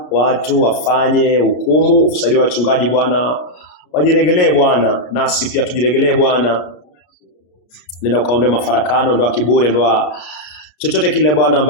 watu wafanye hukumu, saidia wachungaji Bwana wajiregelee Bwana, nasi pia tujiregelee Bwana. Nenda ukaondoe mafarakano, ndoa kiburi, ndoa chochote kile Bwana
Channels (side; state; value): right; late; 33 ms